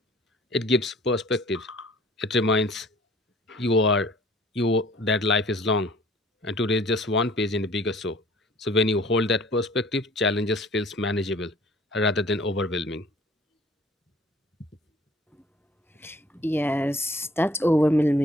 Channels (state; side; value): normal; both; correlation 0.52